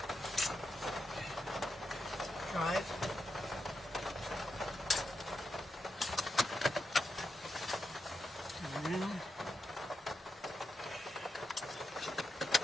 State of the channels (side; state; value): both; normal; correlation 0.85